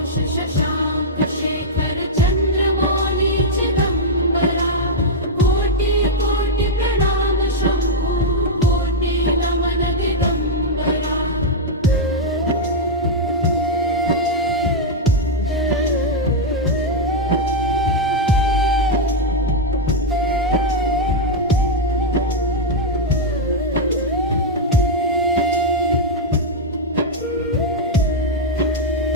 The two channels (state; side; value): normal; both; correlation -0.02